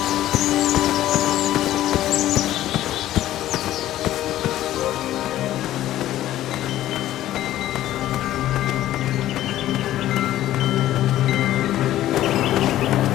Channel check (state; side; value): quieter; right; 13.7 dB